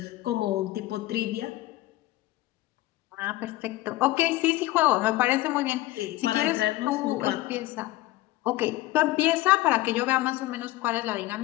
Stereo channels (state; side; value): quieter; right; 17.6 dB